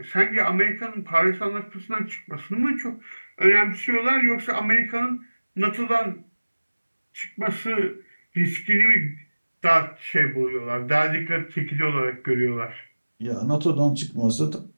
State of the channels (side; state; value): both; inverted; correlation -1.00